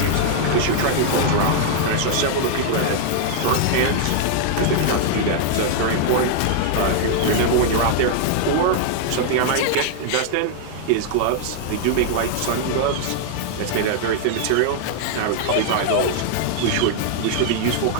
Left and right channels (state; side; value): different; both; correlation -0.01